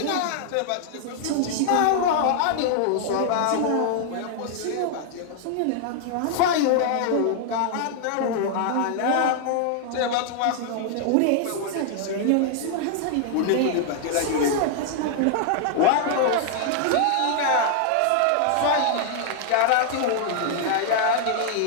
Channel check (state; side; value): different; both; correlation -0.01